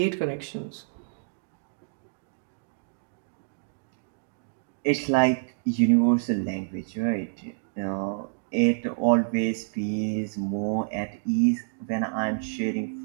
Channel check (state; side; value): silent; left; digital silence